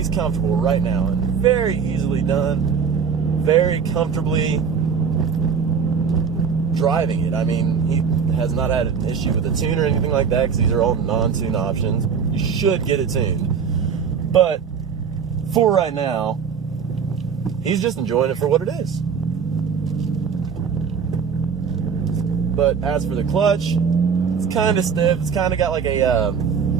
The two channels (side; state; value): left; quieter; 6.4 dB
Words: comfortable right now and very easily done, very comfortably driving it. I mean, he has not had an issue with the tune or anything like that because these are all non-tune options. You should get it tuned. But for right now, he's just enjoying it for what it is. But as for the clutch, it's kind of stiff. It's kind of got like a,